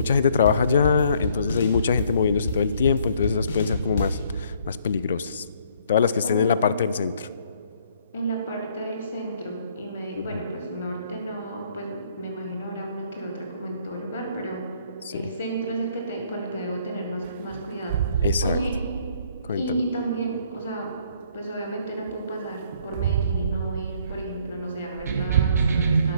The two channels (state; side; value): inverted; both; correlation -0.64